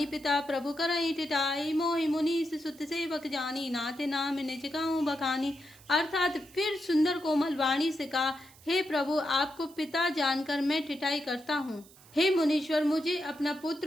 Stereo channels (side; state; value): right; noise; hiss, 24 dB below the sound